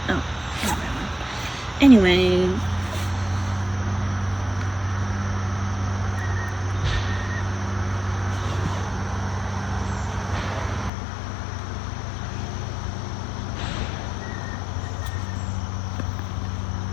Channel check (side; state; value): right; drops out; at 10.9 s